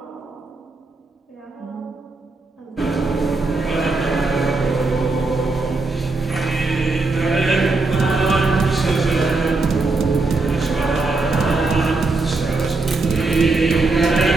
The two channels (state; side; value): quieter; left; 3.5 dB